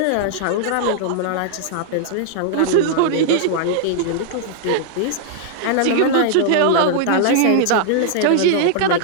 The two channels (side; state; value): both; different; correlation -0.01